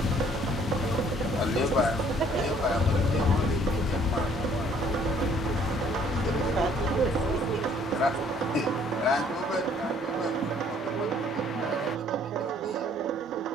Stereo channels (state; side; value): normal; both; correlation 0.60